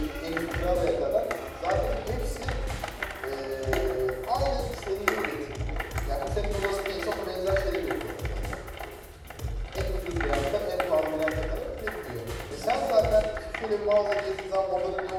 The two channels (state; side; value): identical; both; correlation 1.00